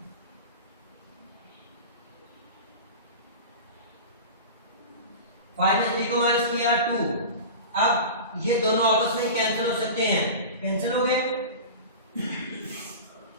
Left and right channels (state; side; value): inverted; both; correlation -0.31